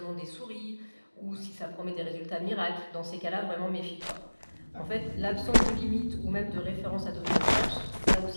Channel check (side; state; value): both; inverted; correlation -1.00